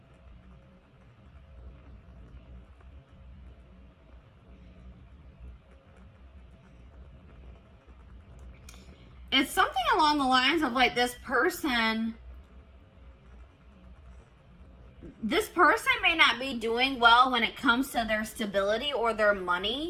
it's something along the lines of like this person may not be doing well when it comes to their stability or their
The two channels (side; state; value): both; identical; correlation 1.00